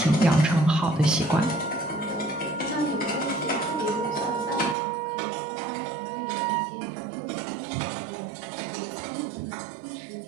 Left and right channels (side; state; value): left; drops out; at 4.8 s